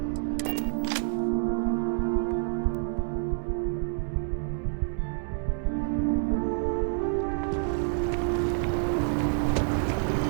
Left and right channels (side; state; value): left; silent; 59 dB below the other